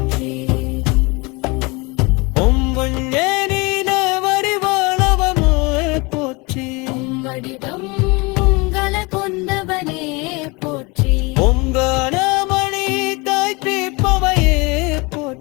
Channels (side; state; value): right; quieter; 26.7 dB